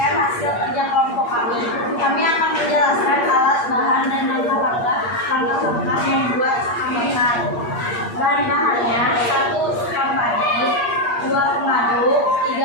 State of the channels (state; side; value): late; right; 8.5 ms